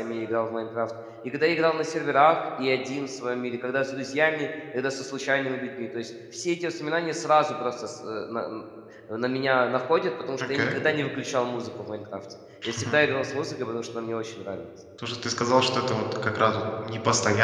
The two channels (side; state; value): both; identical; correlation 1.00